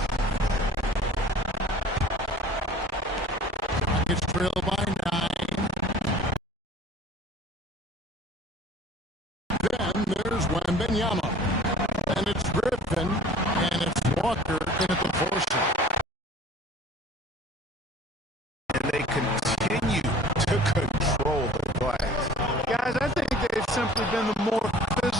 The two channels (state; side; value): normal; both; correlation 0.47